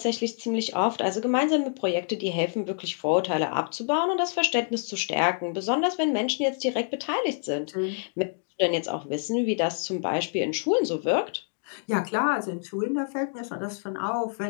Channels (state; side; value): silent; right; 60 dB below the other